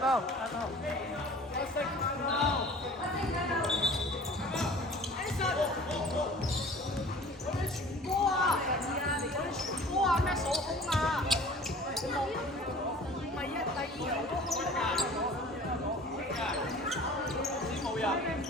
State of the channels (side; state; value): both; normal; correlation 0.45